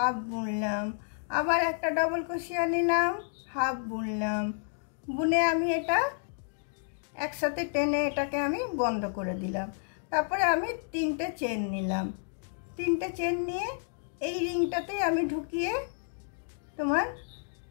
বুনলাম। আবার একটা ডবল ক্রোশিয়া নিলাম, হাফ বুনলাম। বুনে আমি এটা একসাথে টেনে এটাকে আমি বন্ধ করে দিলাম। তারপরে আমি তিনটে চেন নিলাম। তিনটে চেন নিয়ে এই রিংটাতেই আমি ঢুকিয়ে তোমার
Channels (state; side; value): silent; right; digital silence